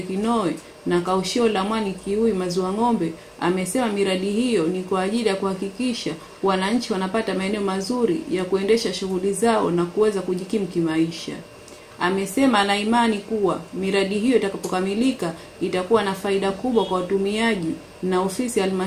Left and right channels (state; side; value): identical; both; correlation 1.00